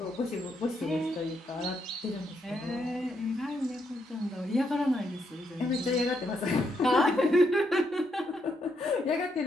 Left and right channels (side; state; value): both; normal; correlation 0.78